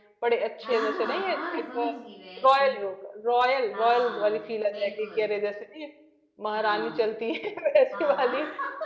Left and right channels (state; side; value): identical; both; correlation 1.00